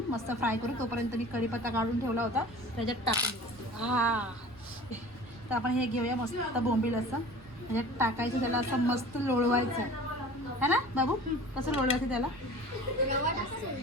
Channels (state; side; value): normal; both; correlation 0.42